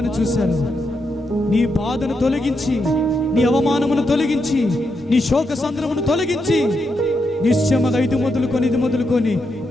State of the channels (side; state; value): both; normal; correlation 0.83